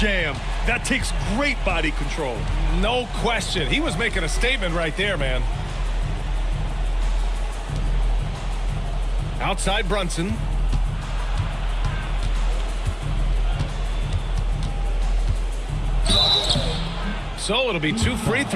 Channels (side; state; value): both; identical; correlation 1.00